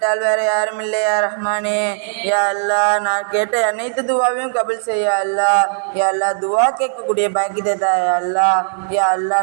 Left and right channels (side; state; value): left; silent; 68 dB below the other